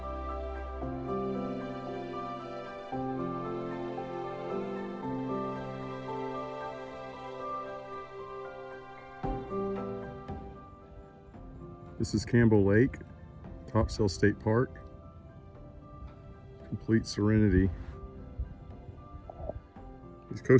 This is Campbell Lake, Topsail State Park. Complete serenity. These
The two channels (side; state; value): both; identical; correlation 1.00